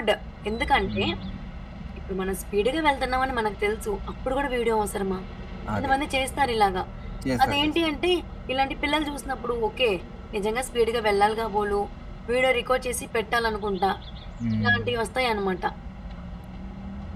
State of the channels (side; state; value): both; identical; correlation 1.00